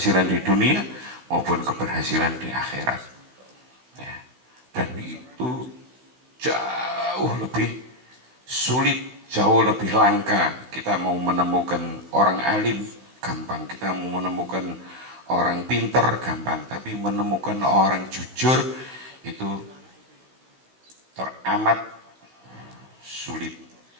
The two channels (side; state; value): left; late; 16 ms